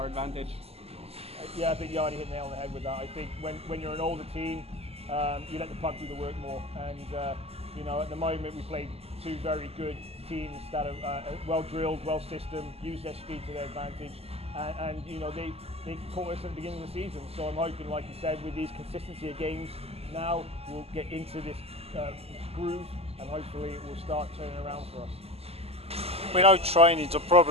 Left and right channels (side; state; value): left; late; 0.29 ms